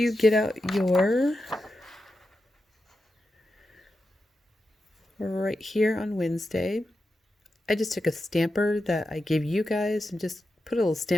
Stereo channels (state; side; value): normal; both; correlation 0.89